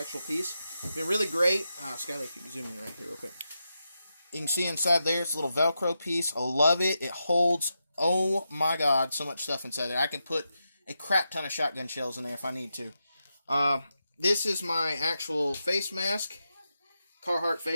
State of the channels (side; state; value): both; inverted; correlation -0.87